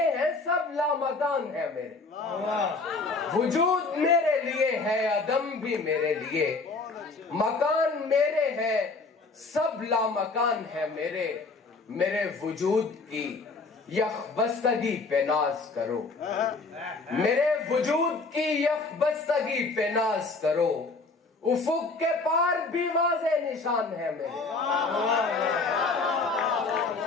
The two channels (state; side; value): quieter; right; 3.8 dB